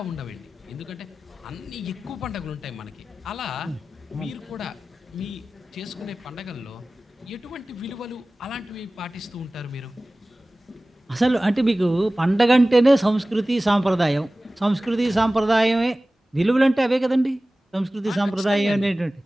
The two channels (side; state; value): both; normal; correlation 0.97